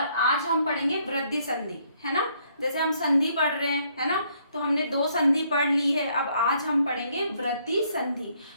हम पढ़ेंगे वृद्धि संधि, है ना। जैसे हम संधि पढ़ रहे हैं, है ना, तो हमने दो संधि पढ़ ली है। अब आज हम पढ़ेंगे वृद्धि संधि।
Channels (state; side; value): inverted; both; correlation -0.69